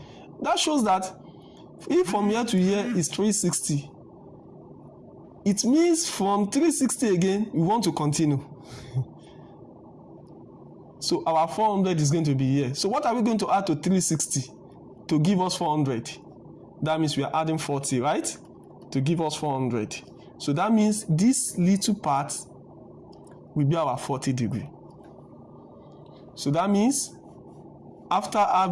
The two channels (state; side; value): identical; both; correlation 1.00